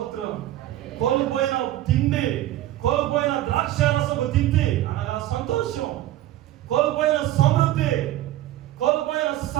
కోల్పోయిన తిండి, కోల్పోయిన ద్రాక్షారసపు తిండి అనగా సంతోషం, కోల్పోయిన సమృద్ధి, కోల్పోయిన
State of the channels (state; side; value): quieter; left; 14.3 dB